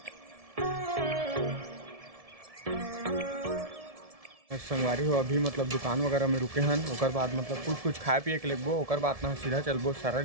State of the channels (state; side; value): late; left; 1.7 ms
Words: संगवारी हो अभी मतलब दुकान वगैरह में रुके हैं और बाद मतलब कुछ खाए पिए के लगबो और बाद ना सीधा चलबो सारा